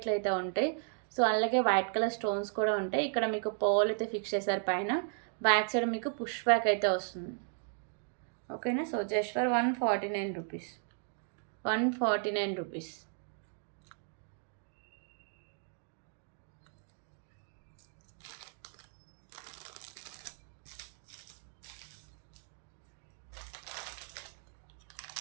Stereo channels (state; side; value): silent; left; 54 dB below the other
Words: అయితే ఉంటాయి. సో అలాగే వైట్ కలర్ స్టోన్స్ కూడా ఉంటాయి. ఇక్కడ మీకు పోల్ అయితే ఫిక్స్ చేశారు పైన. బ్యాక్ సైడ్ మీకు పుష్ బ్యాక్ అయితే వస్తుంది. ఓకేనా. So just for 149 rupees. 149 rupees.